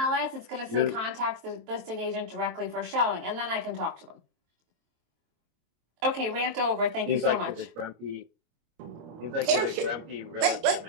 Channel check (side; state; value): left; late; 25 ms